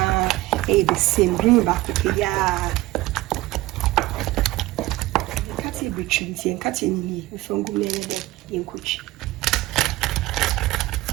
the same green back ya. Kati between nti en kati ni ni from go me de ye nkochi.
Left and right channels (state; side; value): quieter; left; 18.3 dB